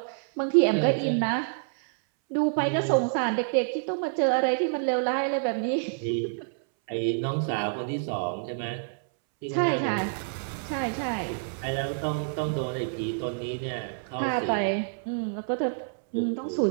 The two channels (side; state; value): left; silent; 60 dB below the other